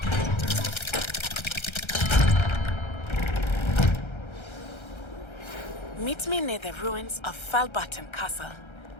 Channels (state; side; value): late; right; 1.3 ms